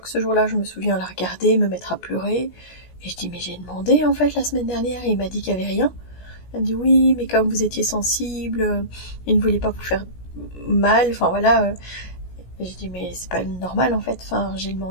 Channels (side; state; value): right; late; 17 ms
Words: ce jour-là, je me souviens la regarder, me mettre à pleurer, et je dis mais j'ai demandé en fait la semaine dernière et il m'a dit qu'il y avait rien. Elle me dit oui mais comme vous étiez sensible, il ne voulait pas vous faire mal, enfin voilà. Et je dis mais c'est pas normal en fait, enfin j'ai